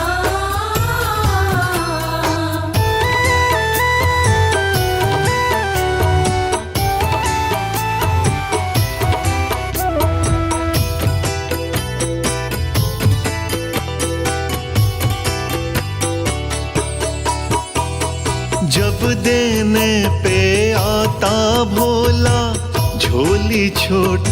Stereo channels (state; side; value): identical; both; correlation 1.00